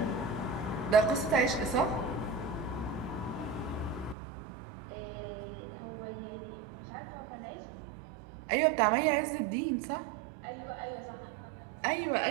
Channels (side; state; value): left; drops out; at 4.2 s